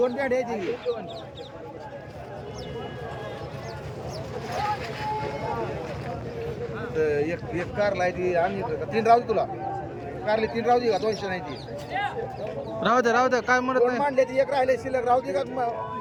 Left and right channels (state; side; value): identical; both; correlation 1.00